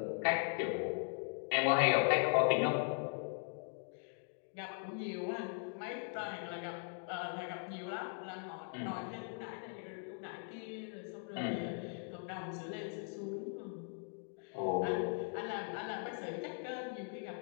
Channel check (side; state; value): right; silent; 51 dB below the other